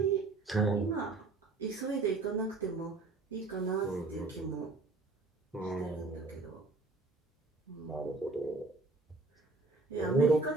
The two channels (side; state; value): left; quieter; 3.6 dB